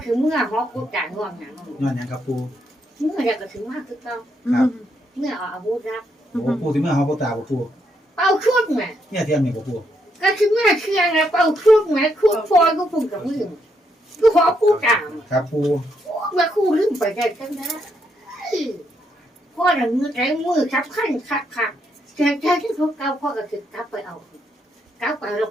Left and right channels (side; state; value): both; normal; correlation 0.77